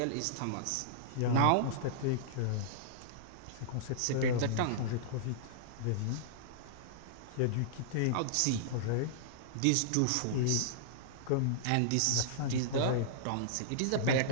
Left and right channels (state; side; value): different; both; correlation -0.02